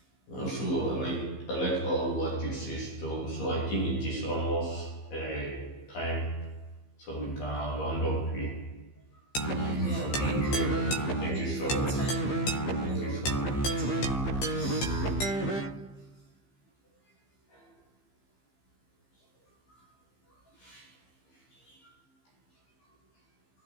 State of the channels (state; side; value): late; right; 15 ms